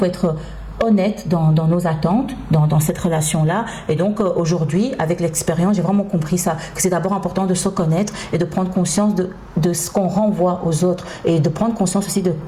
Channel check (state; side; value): identical; both; correlation 1.00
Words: être honnête dans nos attentes, dans cette relation-là. Et donc aujourd'hui, avec l'expérience, j'ai vraiment compris ça, que c'est d'abord important de se connaître et de prendre conscience de ce qu'on renvoie aux autres et de prendre conscience aussi de